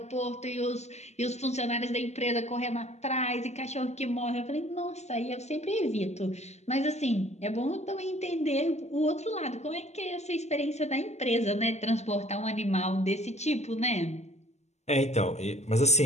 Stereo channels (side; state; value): right; late; 0.33 ms